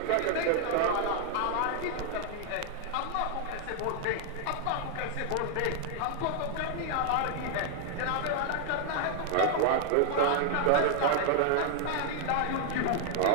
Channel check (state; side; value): different; both; correlation 0.00